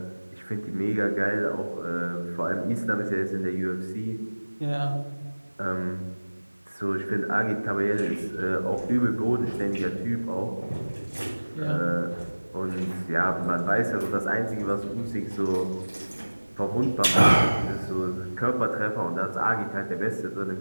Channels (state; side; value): inverted; both; correlation -1.00